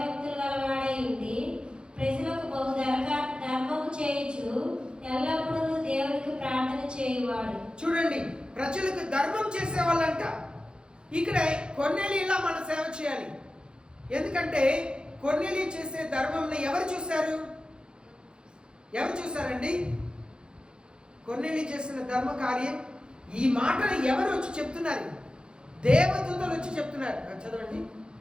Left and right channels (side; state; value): left; late; 0.050 ms